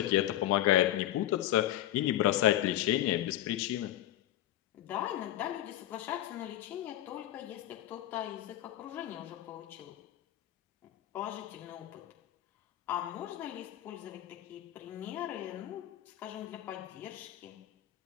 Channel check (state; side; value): quieter; right; 13.5 dB